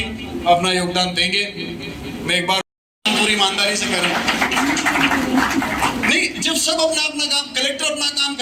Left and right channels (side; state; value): both; identical; correlation 1.00